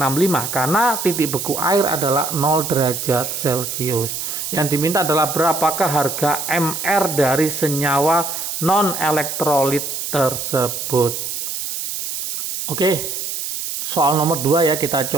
karena titik beku air adalah 0 derajat Celcius. Yang diminta adalah berapakah harga MR dari senyawa non-elektrolit tersebut. Oke. Soal nomor 2 ya, kita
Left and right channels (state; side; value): noise; right; hiss, 4 dB below the sound